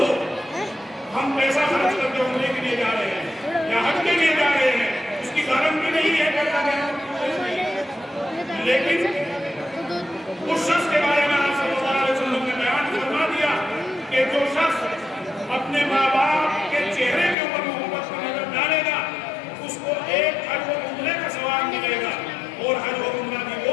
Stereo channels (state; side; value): drops out; right; at 17.4 s